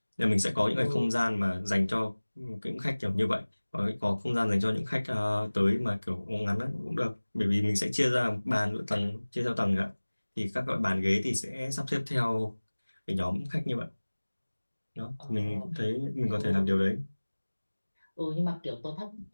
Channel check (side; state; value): both; inverted; correlation -1.00